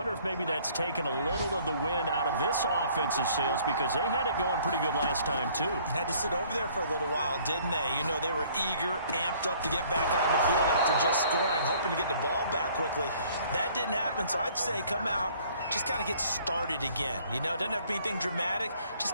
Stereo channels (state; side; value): inverted; both; correlation -0.58